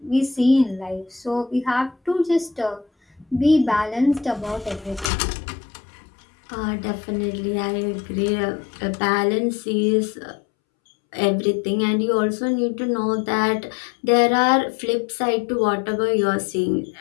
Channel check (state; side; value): drops out; right; at 5.1 s